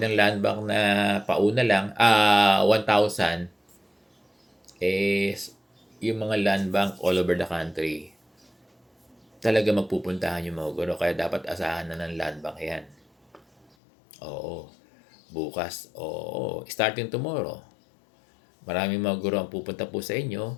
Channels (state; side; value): drops out; right; at 13.7 s